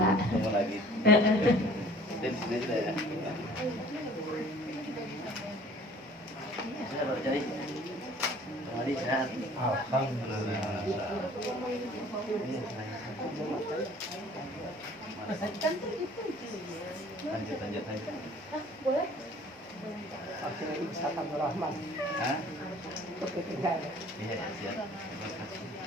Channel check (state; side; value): normal; both; correlation 0.51